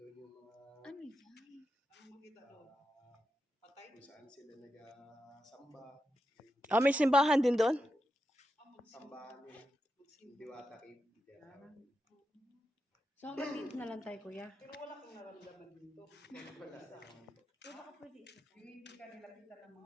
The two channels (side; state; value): both; normal; correlation 0.87